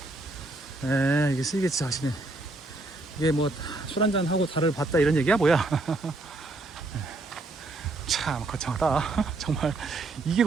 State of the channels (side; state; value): left; quieter; 3.0 dB